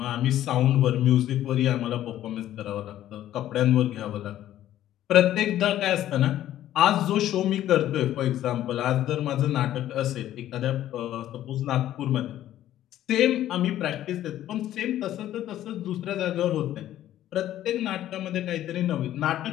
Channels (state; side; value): quieter; right; 12.7 dB